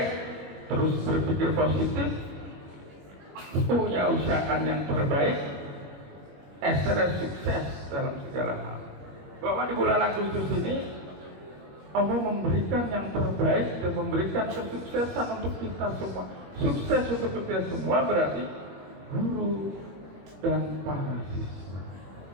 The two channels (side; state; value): left; late; 21 ms